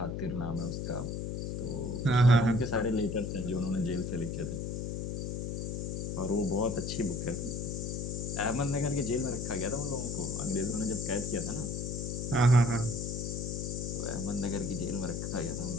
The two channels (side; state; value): left; noise; hum, 3 dB below the sound